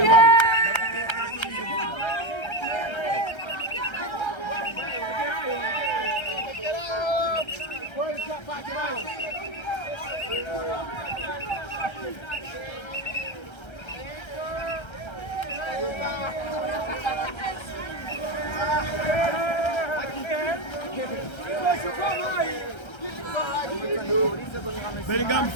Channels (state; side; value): late; right; 1.3 ms